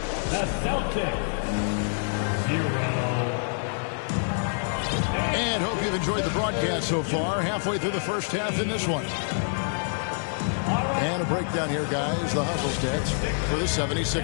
Celtics, 0. And hope you've enjoyed the broadcast so far. Halfway through the first half in this one. And a breakdown here, guys. The hustle stats for the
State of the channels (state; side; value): silent; right; digital silence